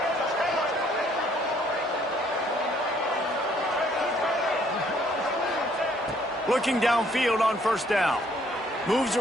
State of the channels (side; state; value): both; normal; correlation 0.64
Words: Looking downfield on first down. Moves